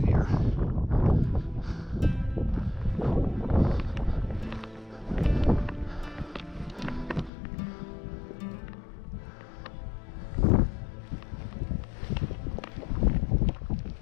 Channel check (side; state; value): right; drops out; at 7.3 s